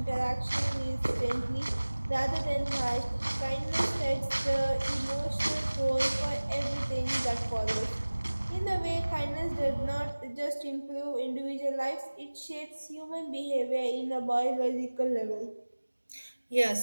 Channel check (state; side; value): inverted; both; correlation -1.00